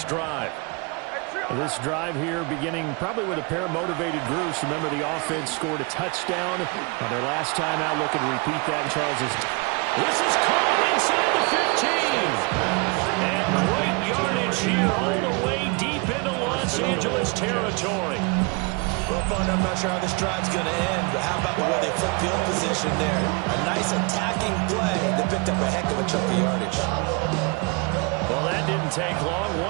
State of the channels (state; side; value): quieter; left; 29.9 dB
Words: drive. This drive here beginning probably with a pair of motivated groups. Remember, the offense scored a touchdown on their last time out, looking to repeat that in Charles's. This is caught inside the 15. And great yardage here all the way deep into Los Angeles territory. Well, partner, I'm not sure how this drive's going to end, but how about the way they flip field position there? A nice attacking play. They picked up a heck of a chunk of yardage. Well, that didn't take long.